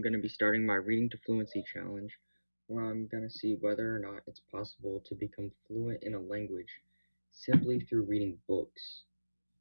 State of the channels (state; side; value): inverted; both; correlation -1.00